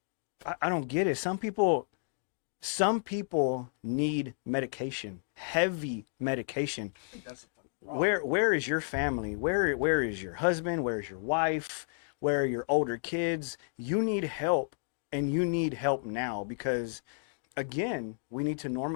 I don't get it. Some people Some people need medication, heavy medication. I think that's the fucking problem. Where is your family? Where is your husband? Where is your wife? Where are your older kids? You need help, and you need help now, because again, we need to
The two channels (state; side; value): silent; right; digital silence